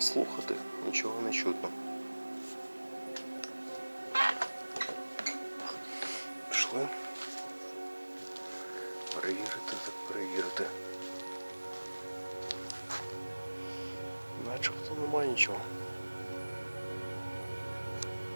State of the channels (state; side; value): inverted; both; correlation -1.00